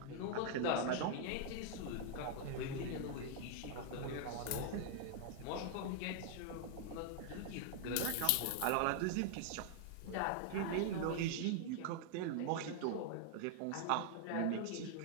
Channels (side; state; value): both; different; correlation 0.00